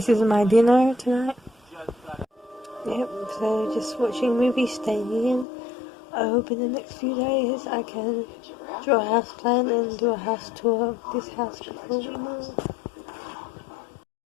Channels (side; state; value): right; drops out; at 5.5 s